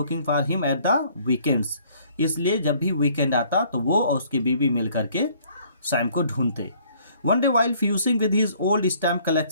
for him at the weekends, इसलिए जब भी वीकेंड आता तो वो और उसकी बीवी मिल करके सैम को ढूंढते। One day while fusing with his old stamp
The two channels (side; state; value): both; inverted; correlation -0.60